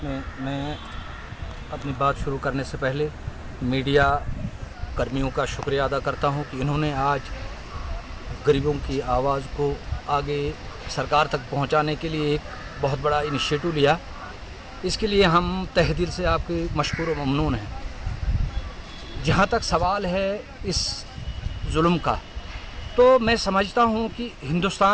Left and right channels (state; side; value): identical; both; correlation 1.00